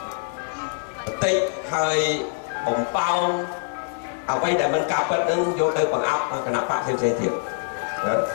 បន្តិចហើយបំផោងអ្វីដែលមិនការពិតនឹងយកទៅបង្អាប់គណៈបកផ្សេងៗទៀតណា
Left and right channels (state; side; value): silent; right; 59 dB below the other